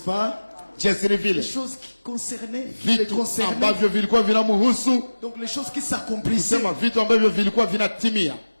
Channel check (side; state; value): both; inverted; correlation -1.00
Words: jinsi ni Les vile choses qui concernaient, les vitu concernaient. ambavyo vilikuwa vinamhusu, Donc les choses qui s'accomplissaient. kusema vitu ambavyo vilikuwa vinatimia.